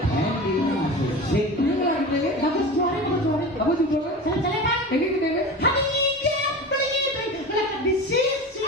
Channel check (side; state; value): both; normal; correlation 0.30